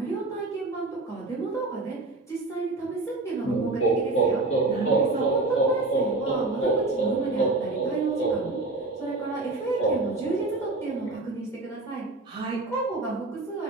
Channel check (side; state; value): left; quieter; 3.2 dB